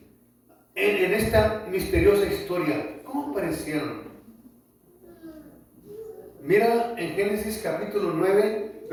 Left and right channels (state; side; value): identical; both; correlation 1.00